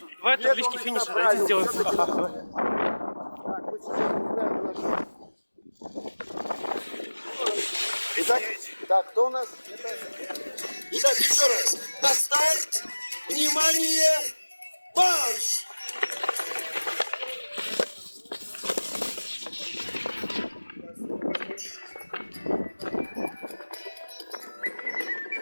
Давай таблички финиша, давайте сделаем. Так, мы сейчас не знаем, на что. Итак, кто у нас? Итак, еще раз. На старт! Внимание! Марш!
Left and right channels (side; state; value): both; inverted; correlation -1.00